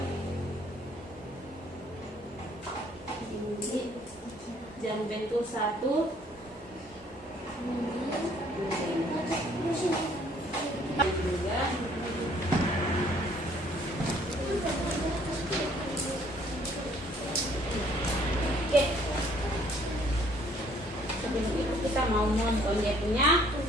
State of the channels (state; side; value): normal; both; correlation 0.61